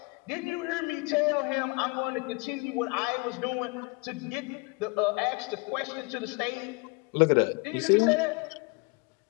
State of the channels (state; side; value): quieter; right; 29.6 dB